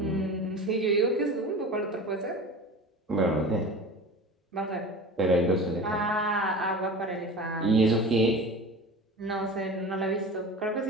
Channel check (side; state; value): both; normal; correlation 0.34